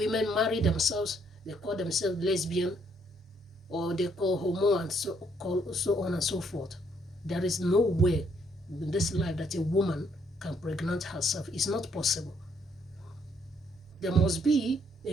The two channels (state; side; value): normal; both; correlation 0.69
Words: marry themselves, they call themselves lesbian, or they call homo, and so on and so forth. There is no way in this life that a woman can pregnant herself. It's not possible. There must be